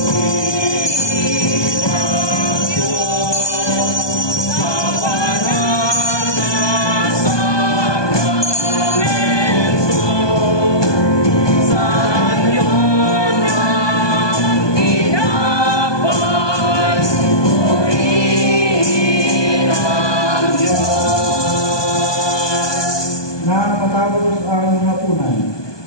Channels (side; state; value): right; late; 1.2 ms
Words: Matapos ang hapunan,